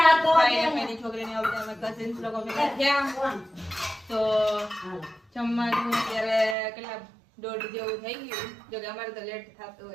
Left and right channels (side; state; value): left; drops out; at 6.6 s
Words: અને ભાઈની છોકરીને બધા અમે કઝિન્સ લોકો ભેગા થયા. તો જમવાનું અત્યારે કેટલા 1:30 જેવું થઈ ગયું. જો કે અમારે તો લેટ થતું